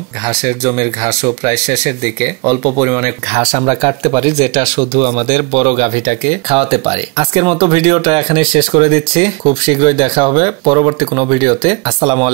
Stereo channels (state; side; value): quieter; left; 29.1 dB